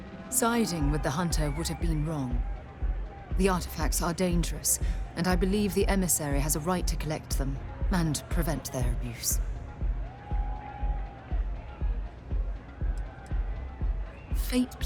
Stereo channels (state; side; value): identical; both; correlation 1.00